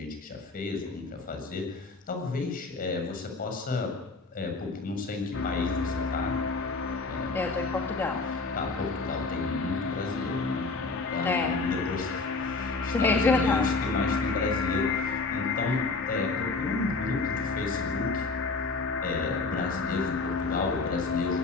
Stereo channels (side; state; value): right; quieter; 3.8 dB